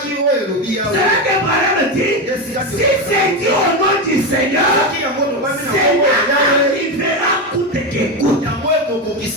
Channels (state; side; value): normal; both; correlation 0.14